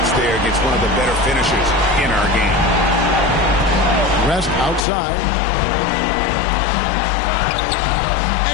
there against one of the better finishers in our game. West outside.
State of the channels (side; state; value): right; drops out; at 4.8 s